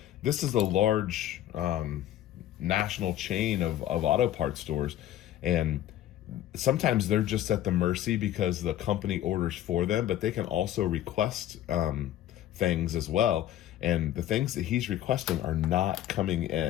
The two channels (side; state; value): right; quieter; 12.5 dB